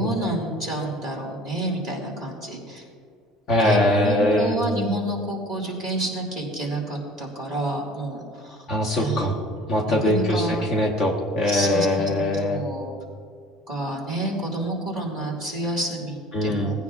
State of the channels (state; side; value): normal; both; correlation 0.48